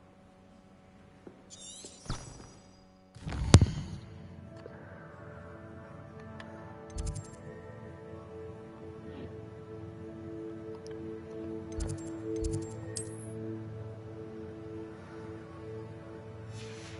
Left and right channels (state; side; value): identical; both; correlation 1.00